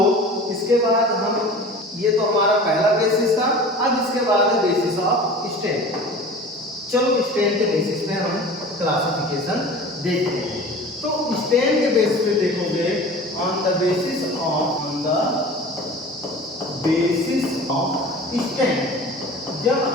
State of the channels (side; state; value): both; normal; correlation 0.39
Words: इसके बाद हम, ये तो हमारा पहला बेसिस था। अब इसके बाद है बेसिस ऑफ स्ट्रेन। चलो स्ट्रेन के बेसिस पे हम क्लासिफिकेशन देखते हैं। तो स्ट्रेन के बेसिस पे देखोगे on the basis of strain. जब